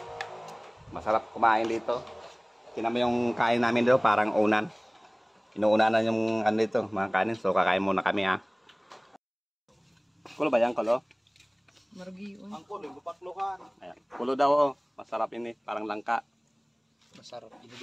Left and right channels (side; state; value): both; identical; correlation 1.00